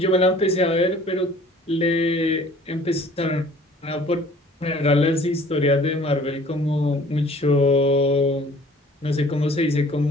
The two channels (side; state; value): both; normal; correlation 0.51